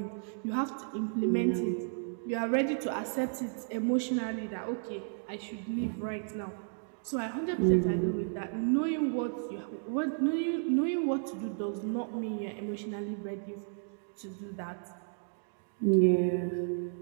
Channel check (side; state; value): left; silent; digital silence